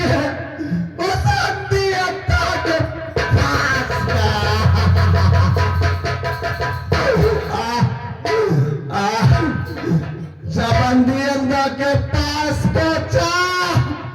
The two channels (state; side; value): identical; both; correlation 1.00